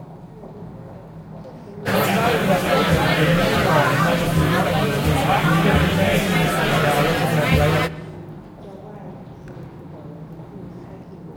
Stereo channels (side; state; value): both; identical; correlation 1.00